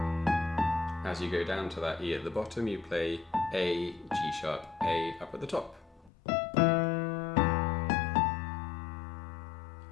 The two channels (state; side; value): drops out; right; at 6.1 s